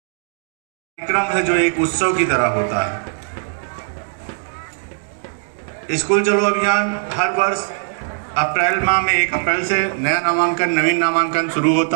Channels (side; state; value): left; silent; digital silence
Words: कार्यक्रम है जो एक उत्सव की तरह होता है। स्कूल चलो अभियान हर वर्ष अप्रैल माह में 1 अप्रैल से नया नामांकन, नवीन नामांकन शुरू